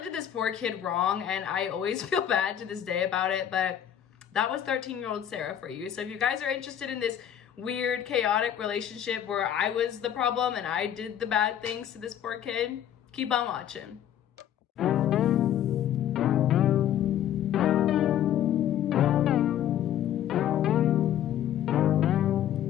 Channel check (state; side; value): quieter; right; 10.4 dB